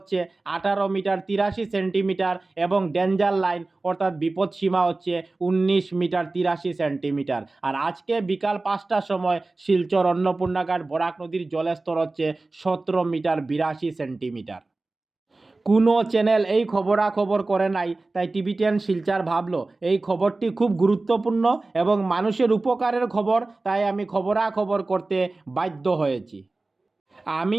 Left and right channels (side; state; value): left; quieter; 3.3 dB